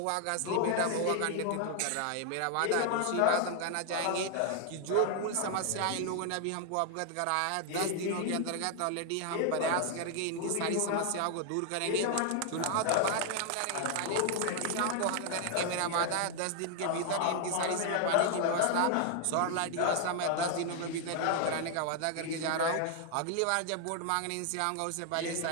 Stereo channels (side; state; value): both; different; correlation 0.00